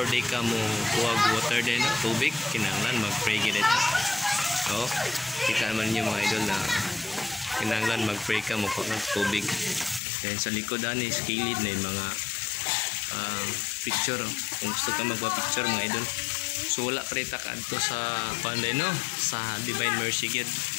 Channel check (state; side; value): drops out; right; at 10.0 s